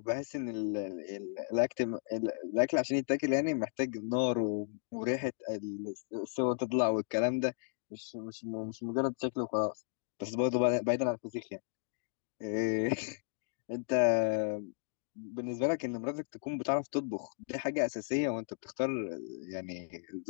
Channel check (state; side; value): silent; right; digital silence